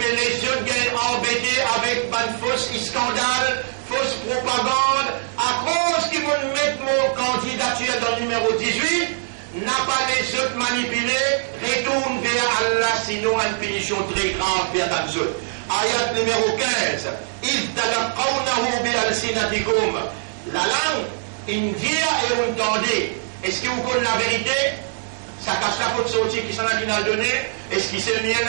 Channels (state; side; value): silent; left; digital silence